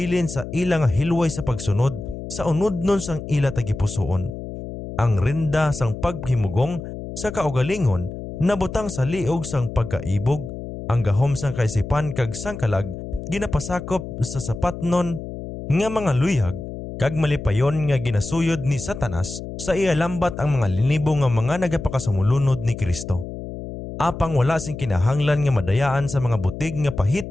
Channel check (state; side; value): noise; left; hum, 9 dB below the sound